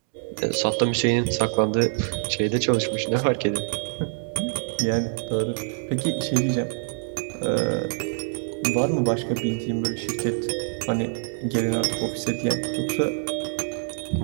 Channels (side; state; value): left; silent; digital silence